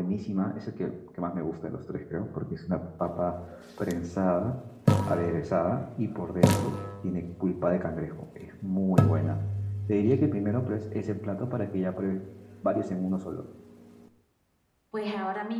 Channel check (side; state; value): both; identical; correlation 1.00